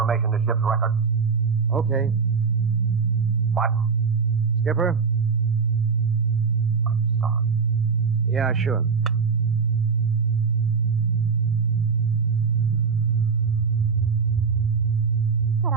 to ship's records. Okay. What? Skipper? I'm sorry. Yeah, sure. You cut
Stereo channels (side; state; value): left; quieter; 5.5 dB